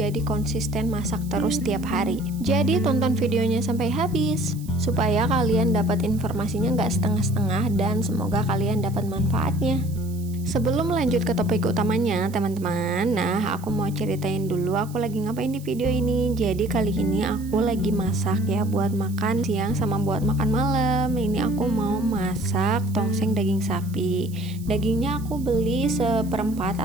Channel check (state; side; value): noise; right; hiss, 21 dB below the sound